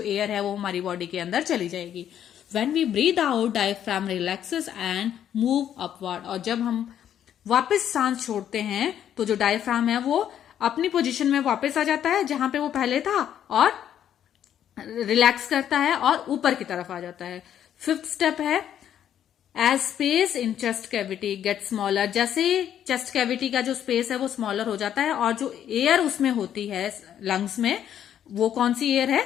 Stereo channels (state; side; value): quieter; right; 10.1 dB